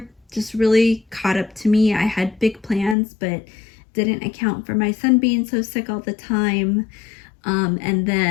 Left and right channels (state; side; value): drops out; right; at 3.0 s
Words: just really caught up to me. I had big plans, but didn't account for my son being so sick all the time. And